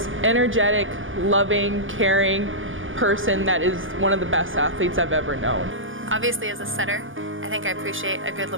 energetic, loving, caring person that is one of the best athletes I've ever known. Obviously, as a setter, I think I appreciate a good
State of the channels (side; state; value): left; late; 0.58 ms